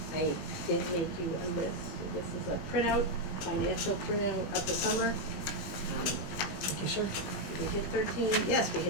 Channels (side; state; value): right; late; 21 ms